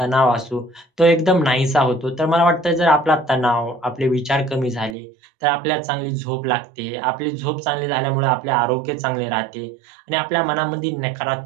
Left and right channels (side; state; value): left; drops out; at 5.0 s